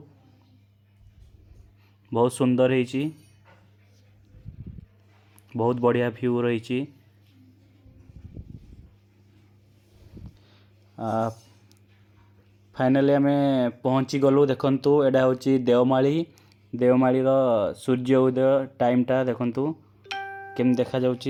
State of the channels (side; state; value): both; identical; correlation 1.00